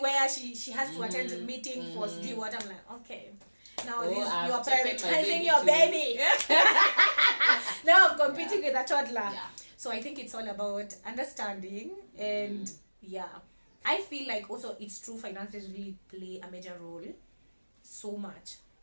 where she has to attend a meeting for to do what. I'm like, okay. Now Oh, I've you are taken my prioritizing baby your too. baby. Now I'm competing with a toddler. Yeah. So So I think it's all about understanding and yeah. I feel like also it's true, finances really play a major role so much.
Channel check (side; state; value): both; inverted; correlation -1.00